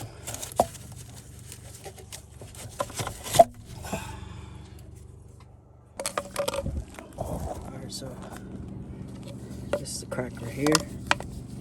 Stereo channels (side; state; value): both; identical; correlation 1.00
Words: So this is a crack right here.